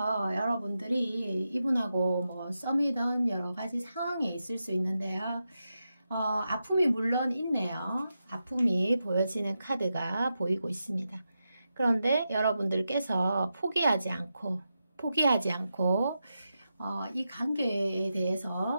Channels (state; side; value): inverted; both; correlation -0.88